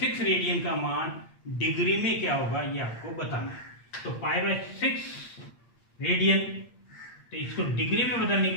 रेडियन का मान डिग्री में क्या होगा ये आपको बताना है। तो पाई/6 रेडियन, तो इसको डिग्री में बदलने के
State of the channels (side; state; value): right; late; 8.6 ms